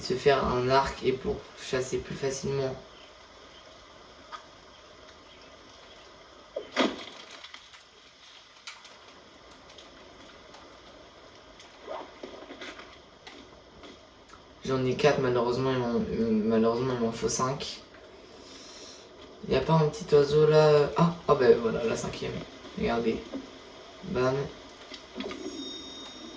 se faire un arc et pour chasser plus facilement. J'en ai 4, malheureusement, il m'en faut 5. Il n'y a pas un petit oiseau là? Ah, oh ben voilà, la 5e. Regardez. Bam.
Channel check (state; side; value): identical; both; correlation 1.00